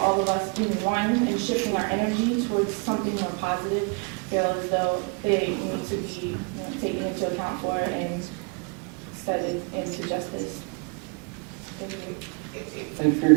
of us being one and shifting our energy towards something more positive, feel as though they need to be taken into account for and studied into justice. Thank you. Thank you for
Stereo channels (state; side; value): quieter; left; 32.8 dB